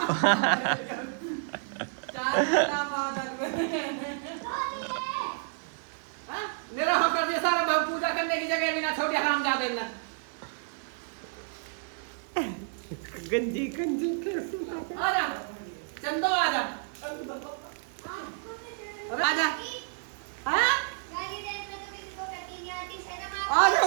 मेरा होकर दिया सारा भाव पूजा करने की जगह भी ना छोड़ी। हरामजादे ने गंजी गंजी आजा चंदो आजा आजा। हाँ आ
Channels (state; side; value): silent; left; digital silence